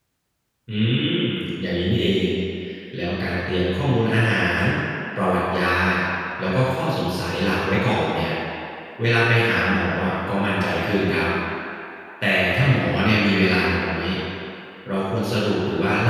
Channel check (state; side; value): identical; both; correlation 1.00